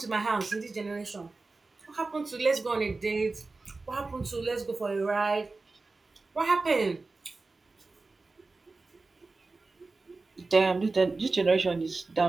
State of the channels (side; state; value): left; quieter; 3.6 dB